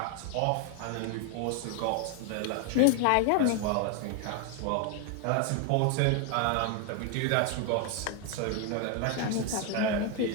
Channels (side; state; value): both; different; correlation 0.01